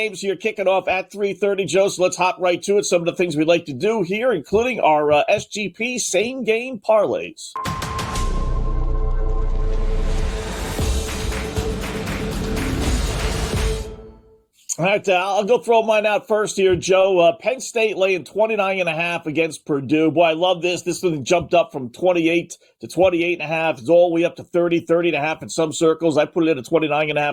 here kicking off at 3:30, Joe, so let's hop right to it. Some of the things we like to do here, including our SGP same-game parlays. All right, I'll go throw mine out first here, Joe. Penn State laying 29.5 against Purdue. Boy, I love this. This one jumped up from 28 to 28.5. It's all the way up to 30.5 in some circles. I put it in at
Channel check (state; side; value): identical; both; correlation 1.00